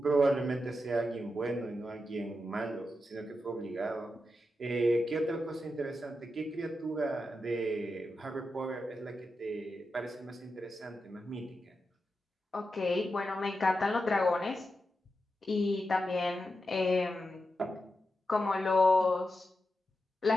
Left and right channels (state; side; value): normal; both; correlation 0.88